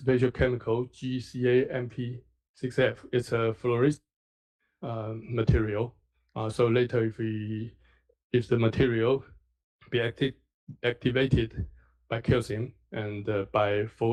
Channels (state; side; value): identical; both; correlation 1.00